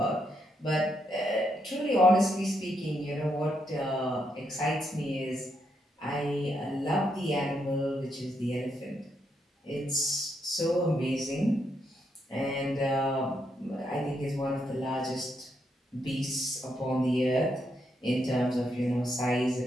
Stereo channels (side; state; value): both; normal; correlation 0.79